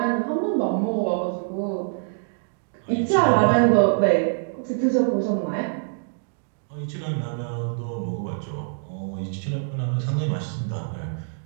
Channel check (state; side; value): silent; left; digital silence